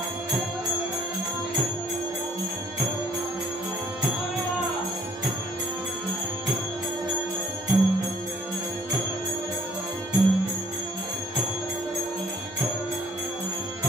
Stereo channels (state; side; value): normal; both; correlation 0.61